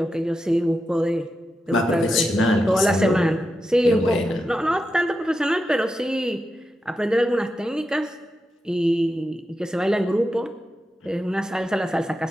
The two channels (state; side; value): normal; both; correlation 0.88